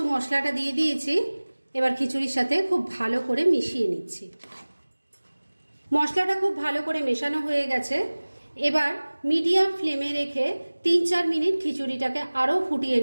মশলাটা দিয়ে দিয়েছি। এবার খিচুড়ির সাথে খুব ভালো করে মিশিয়ে নিচ্ছি। মশলাটা খুব ভালো করে মেশানো হয়ে গেছে। এবার মিডিয়াম ফ্লেমে রেখে 3-4 মিনিট খিচুড়িটাকে আরও ফুটিয়ে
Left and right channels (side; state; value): both; inverted; correlation -1.00